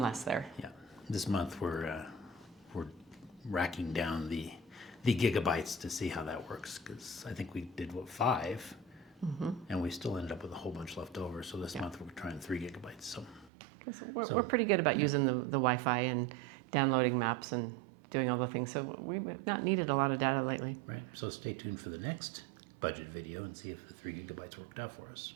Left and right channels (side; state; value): left; drops out; at 13.5 s